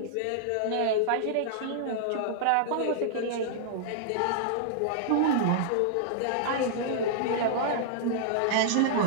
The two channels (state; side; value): different; both; correlation -0.01